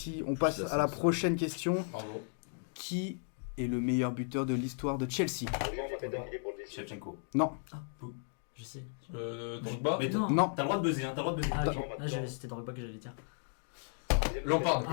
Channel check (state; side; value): silent; right; 55 dB below the other